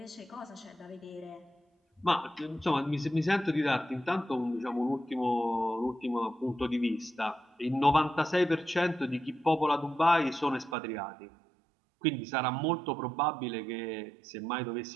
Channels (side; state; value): left; drops out; at 10.8 s